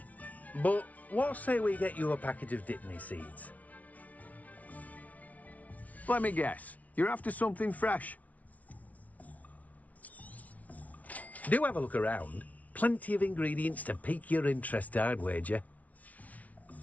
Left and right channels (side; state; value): right; late; 0.070 ms